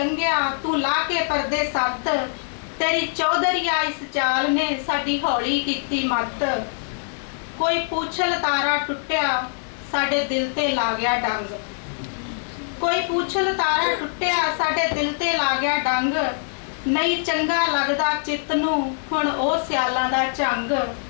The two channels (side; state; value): right; silent; 56 dB below the other